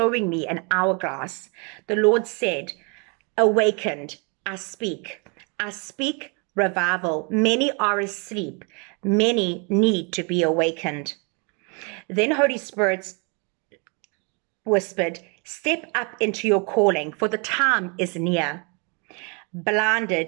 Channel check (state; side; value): quieter; left; 33.4 dB